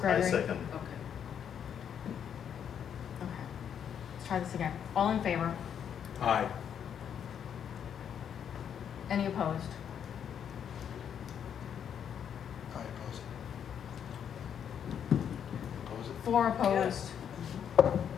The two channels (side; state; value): right; quieter; 8.4 dB